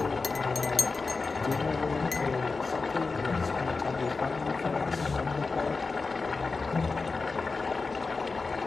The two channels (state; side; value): quieter; right; 4.1 dB